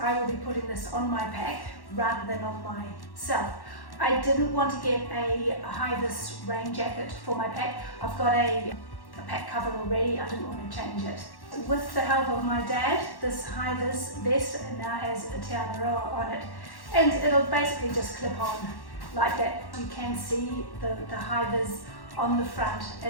I will be putting this on my pack rather than on myself. I didn't want to get a high-vis rain jacket for my pack. I've got a pack cover already, I didn't want to change it. With the help of my dad, this high-vis vest now has a Te Araroa on it, and it'll basically just clip on like that. You can see the high-vis on the front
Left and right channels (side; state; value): right; late; 1.1 ms